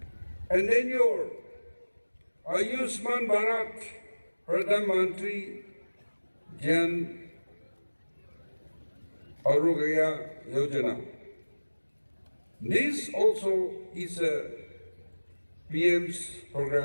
And then your Ayushman Bharat Pradhan Mantri Jan Arogya Yojana. This also is a PM's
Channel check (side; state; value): both; inverted; correlation -1.00